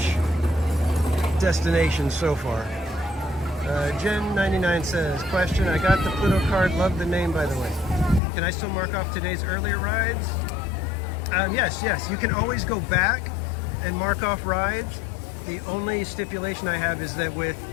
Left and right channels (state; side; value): drops out; right; at 8.2 s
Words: destinations so far. Jen99 says, question, I got the Pluto card, love the name by the way. Can I still mark off today's earlier rides? Yes, you can always go back and mark off rides. The only stipulation I have is that with